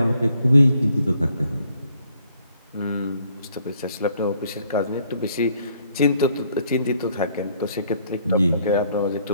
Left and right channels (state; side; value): inverted; both; correlation -0.66